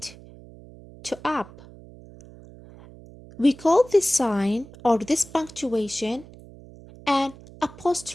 to up. We call this sign or this punctuation an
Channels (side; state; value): right; noise; hum, 20 dB below the sound